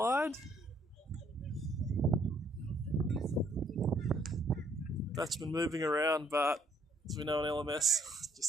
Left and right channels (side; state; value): both; normal; correlation 0.66